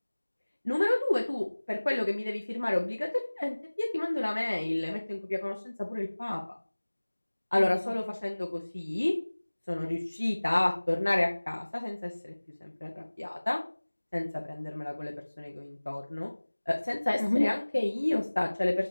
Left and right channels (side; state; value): both; inverted; correlation -1.00